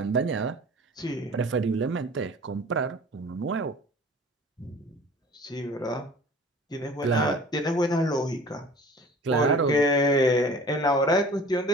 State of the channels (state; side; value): normal; both; correlation 0.45